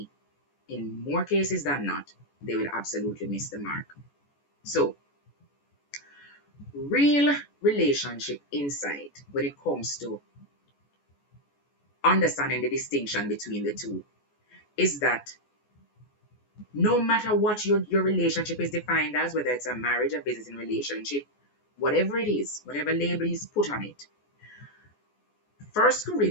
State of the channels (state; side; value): late; right; 14 ms